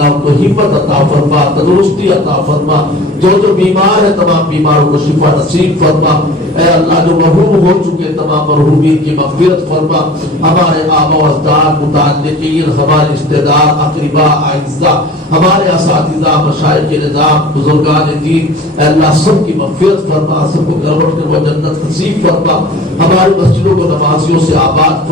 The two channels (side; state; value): both; normal; correlation 0.42